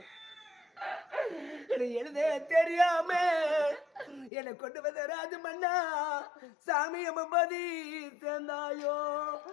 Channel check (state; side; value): drops out; right; at 4.3 s